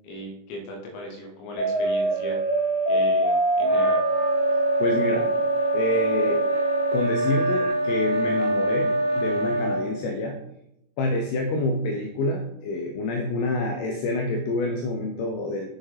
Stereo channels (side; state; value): right; late; 23 ms